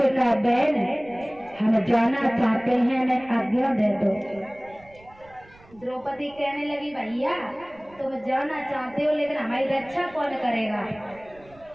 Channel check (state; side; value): noise; right; rumble, 26 dB below the sound